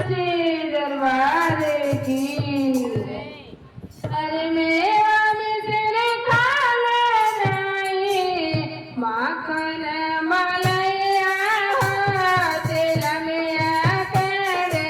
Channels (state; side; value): identical; both; correlation 1.00